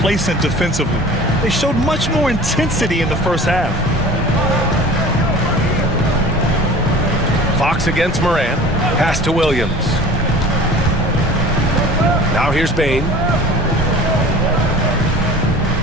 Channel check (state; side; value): normal; both; correlation 0.42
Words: defensively. They showed much more intensity in the first half. Fox against Moran. Pass to Williams. Now here's Bane.